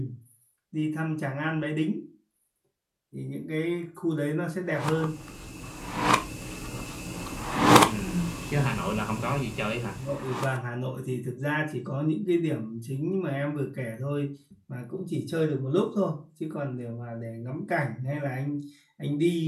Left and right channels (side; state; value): both; identical; correlation 1.00